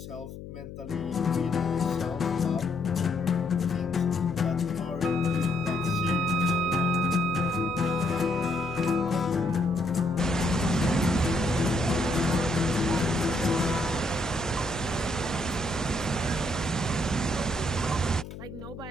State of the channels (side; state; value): left; noise; hum, 12 dB below the sound